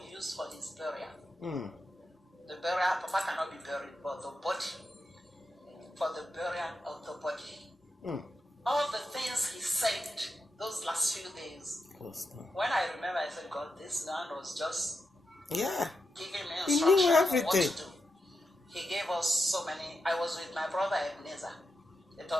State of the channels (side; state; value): both; normal; correlation 0.87